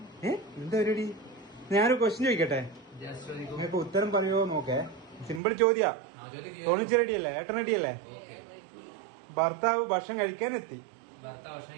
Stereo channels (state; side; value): drops out; left; at 5.4 s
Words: എന്താ പരിപാടി? ഞാനൊരു ക്വസ്റ്റ്യൻ ചോദിക്കട്ടെ, നിങ്ങൾക്ക് ഉത്തരം പറയുമോ നോക്കേ. സിമ്പിൾ ചോദ്യാ. തോന്നിച്ച് റെഡിയല്ലേ? ഏട്ടൻ റെഡിയല്ലേ? ഭർത്താവ് ഭക്ഷണം കഴിക്കാൻ എത്തി.